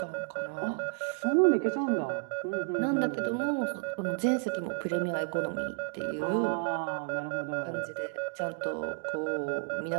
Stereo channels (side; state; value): left; silent; digital silence